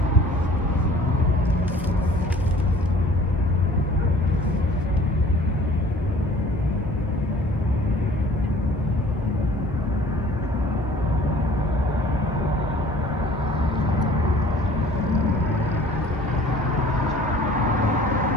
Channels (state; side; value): normal; both; correlation 0.51